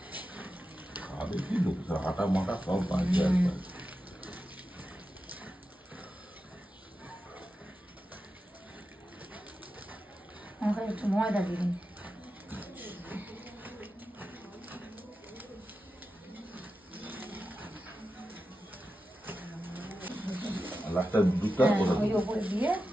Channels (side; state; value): both; normal; correlation 0.91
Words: খাবে কি লোক, আটা মাটা সব বাজে একবার। একটু ময়দা দিন। লাস্টটা দুধটা ওই উপরে দিয়ে